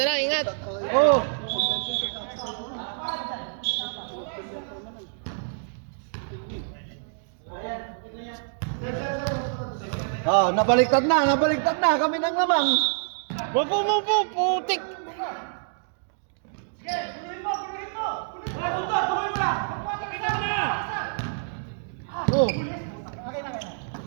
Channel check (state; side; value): silent; left; digital silence